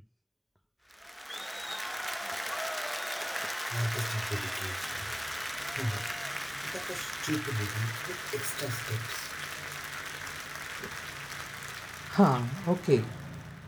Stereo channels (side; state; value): both; identical; correlation 1.00